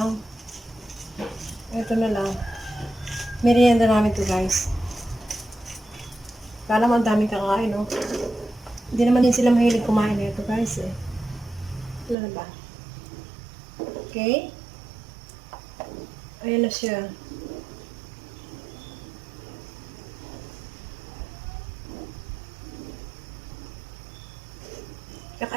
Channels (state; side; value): drops out; left; at 12.2 s